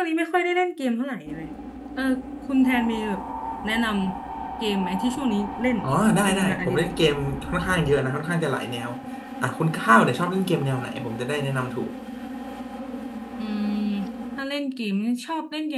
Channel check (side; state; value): both; identical; correlation 1.00